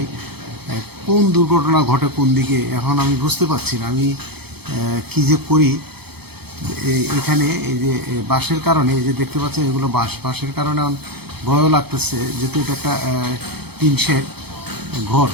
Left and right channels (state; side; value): late; left; 0.97 ms